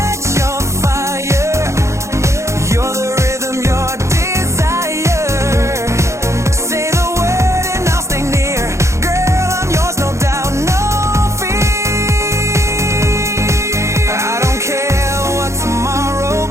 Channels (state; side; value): late; left; 0.14 ms